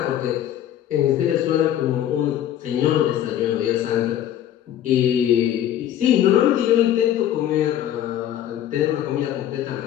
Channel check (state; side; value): quieter; right; 11.3 dB